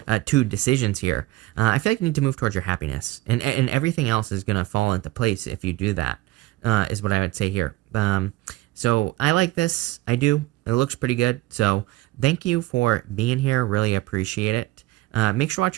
two decisions here. I feel like you need to move towards your happiness, and everything else is going to fall into place if you do that, is what I would say here. So I like this. I do. It looks pretty good. So thank you for being here. Really appreciate it. Make sure to watch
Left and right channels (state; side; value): quieter; left; 17.7 dB